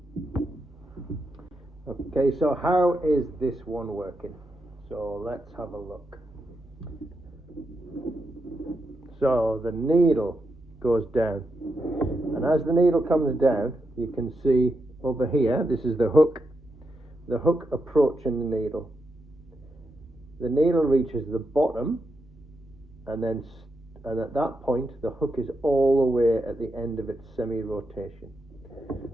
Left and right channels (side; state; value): both; normal; correlation 0.84